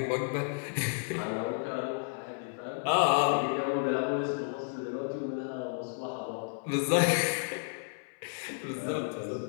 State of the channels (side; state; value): right; silent; 56 dB below the other